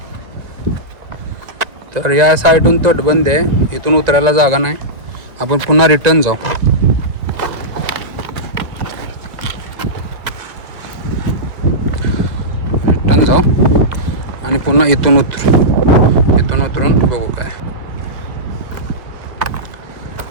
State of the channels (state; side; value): late; left; 1.9 ms